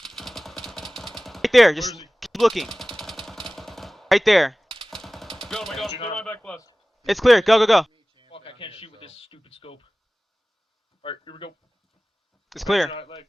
Right there. Where Just is he? keep looking. Right there. Go, my god, clear my back plus. It's clear. Go. Fuck, I can't shoot with this stupid scope. Alright, here we go. It's clear. Right leg.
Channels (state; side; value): normal; both; correlation 0.98